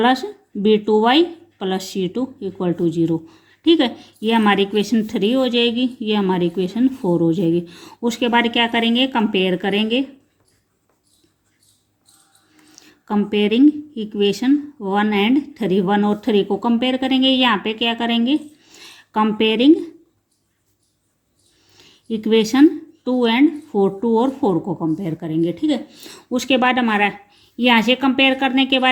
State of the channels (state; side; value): identical; both; correlation 1.00